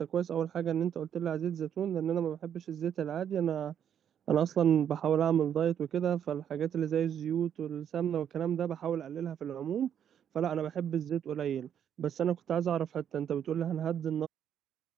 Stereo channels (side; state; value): left; quieter; 9.1 dB